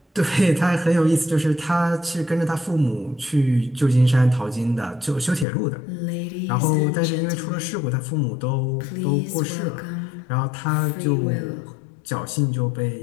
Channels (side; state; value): right; drops out; at 5.5 s